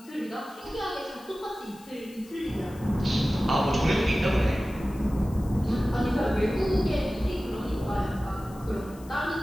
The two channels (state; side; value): noise; left; hiss, 23 dB below the sound